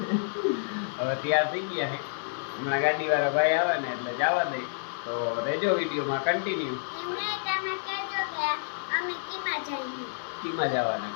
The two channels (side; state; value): right; silent; digital silence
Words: હવે તૈયાર થઈ ગયા છે. હમણાં ગાડી વાળા ભાઈ આવે ને એટલે જવા દે તો રેજો વિડીયોમાં કન્ટિન્યુ. કીમાં જવાના